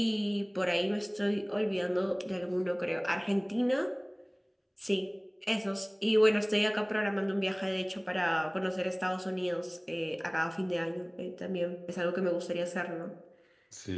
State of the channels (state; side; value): identical; both; correlation 1.00